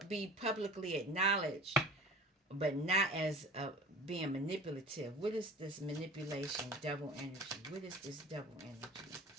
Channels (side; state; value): both; normal; correlation 0.40